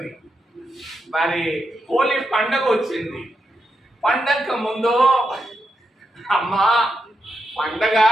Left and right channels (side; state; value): both; normal; correlation 0.85